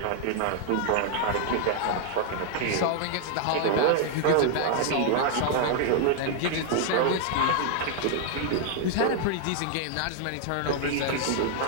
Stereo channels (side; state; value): both; different; correlation 0.00